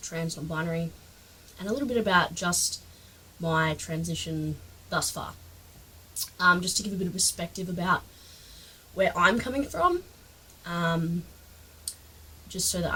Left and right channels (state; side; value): identical; both; correlation 1.00